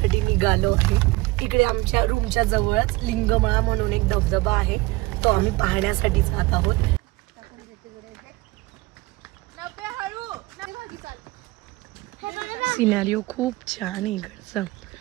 निघालो आहे। इकडे आमच्या रूमच्या जवळच लिंगमळा म्हणून एक धबधबा आहे, तो आम्ही पाहण्यासाठी जात आहोत। सिनेरिओ खूप छान आहे इकडचा।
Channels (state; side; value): quieter; left; 21.3 dB